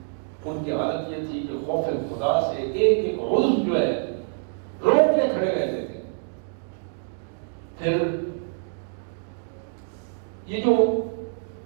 ان کی حالت یہ تھی کہ خوف خدا سے ایک ایک عضو جو ہے روک کے کھڑے رہتے تھے۔ پھر یہ جو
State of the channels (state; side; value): silent; left; digital silence